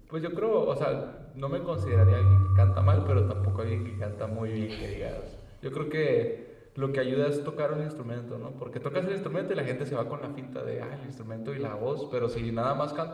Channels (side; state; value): both; identical; correlation 1.00